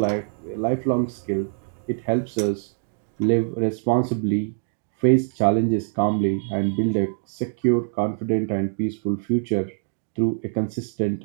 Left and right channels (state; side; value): silent; left; digital silence